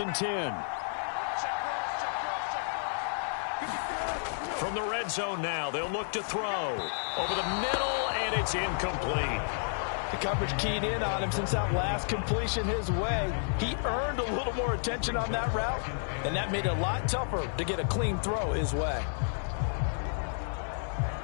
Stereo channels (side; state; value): right; silent; 57 dB below the other